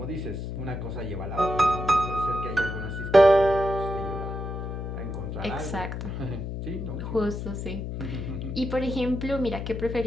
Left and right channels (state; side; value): noise; left; hum, 5 dB below the sound